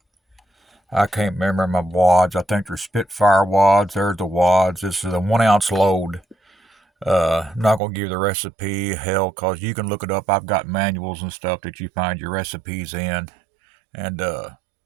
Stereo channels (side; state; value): left; drops out; at 7.8 s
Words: I can't remember my wads. I think they're Spitfire wads. There's the wads. This is a 1 ounce load. I'm not gonna give you the recipe, hell, cause you can look it up. I've got manuals and stuff that you find your recipes in, and to